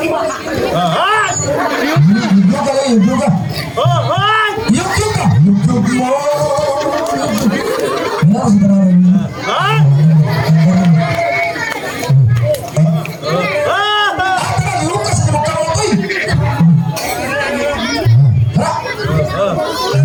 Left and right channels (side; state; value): both; identical; correlation 1.00